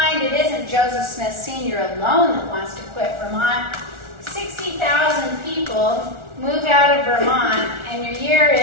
it isn't Joseph Smith Sr. alone that wants to quit Vermont. 60,000 people move out of Vermont, and your year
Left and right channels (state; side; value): late; left; 1.4 ms